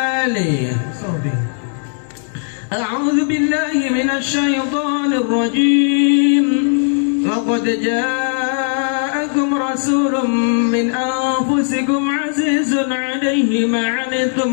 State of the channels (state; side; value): silent; right; digital silence